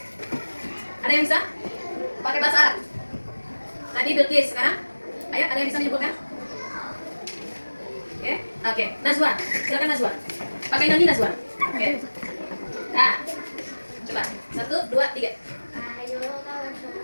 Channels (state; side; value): inverted; both; correlation -1.00